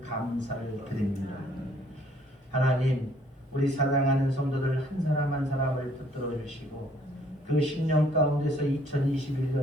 감사를 드립니다. 하나님, 우리 사랑하는 성도들 한 사람 한 사람을 붙들어 주시고, 그 10년 가운데서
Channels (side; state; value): both; normal; correlation 0.62